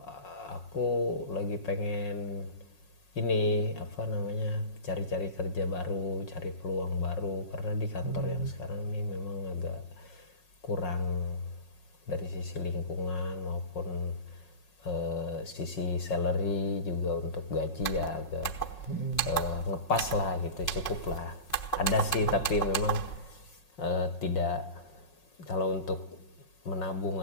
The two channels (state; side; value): late; right; 5.5 ms